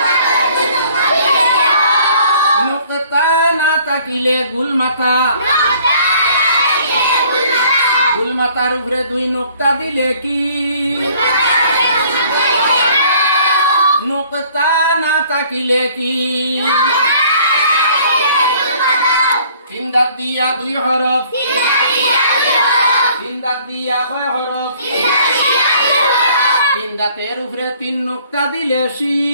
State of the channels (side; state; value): both; inverted; correlation -0.57